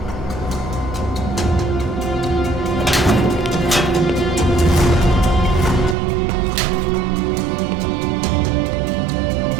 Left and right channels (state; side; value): drops out; left; at 6.0 s